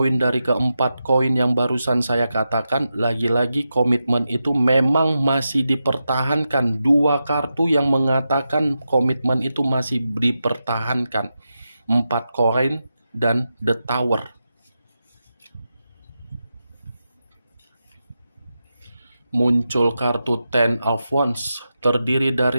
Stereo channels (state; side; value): inverted; both; correlation -0.89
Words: dari ke-4 koin yang barusan saya katakan, lagi-lagi komitmen itu memang masih dipertahankan. 2 kartu yang mengatakan komitmen itu masih dipertahankan. 4 koin dan The Tower. Muncul kartu Ten of Wands. Terdiri